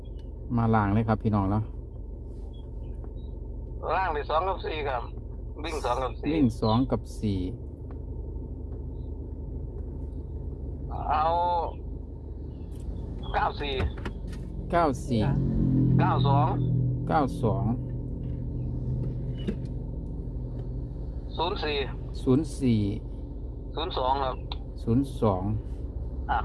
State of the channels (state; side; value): identical; both; correlation 1.00